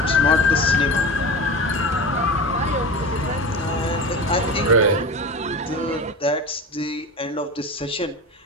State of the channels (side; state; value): both; normal; correlation 0.30